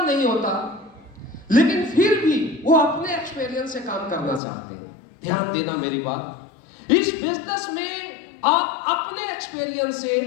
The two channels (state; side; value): drops out; right; at 4.4 s